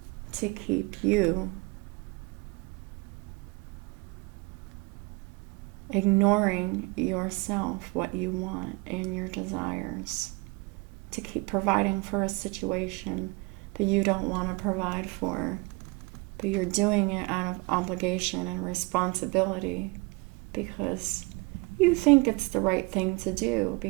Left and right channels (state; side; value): quieter; left; 26.5 dB